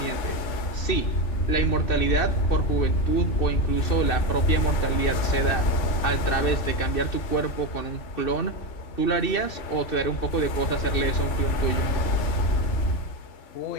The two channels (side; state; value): right; late; 2.6 ms